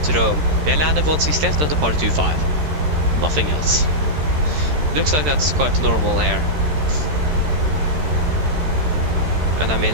Rome, we landed 1.6 left and departed 2.5. Nothing else. Looks like that's quite normal here. And I mean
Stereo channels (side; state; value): left; late; 13 ms